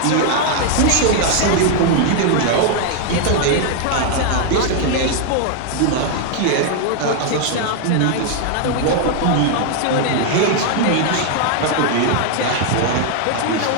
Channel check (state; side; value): different; both; correlation 0.00